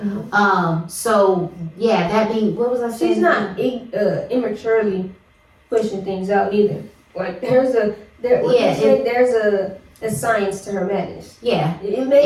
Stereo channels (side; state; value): both; identical; correlation 1.00